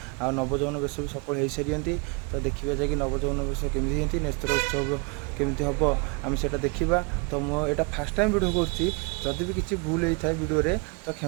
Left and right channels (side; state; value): left; quieter; 31.4 dB